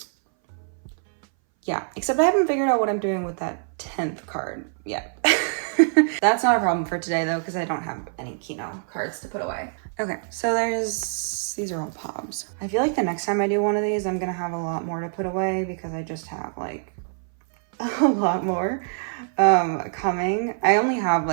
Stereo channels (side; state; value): left; silent; 60 dB below the other